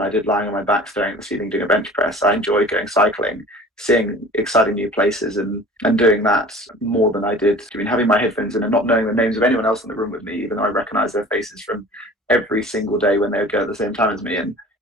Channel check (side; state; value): both; normal; correlation 0.43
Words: I did lying on my back staring at the ceiling doing a bench press. I enjoyed going cycling, seeing exciting new places, and doing that more than I did having my headphones in and not knowing the names of anyone else in the room with me, even though I recognise their faces from every single day when they would go at the same time as me. And